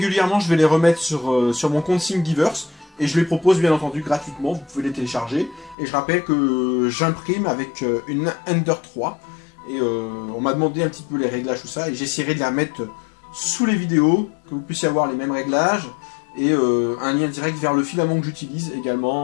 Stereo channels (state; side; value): drops out; right; at 5.8 s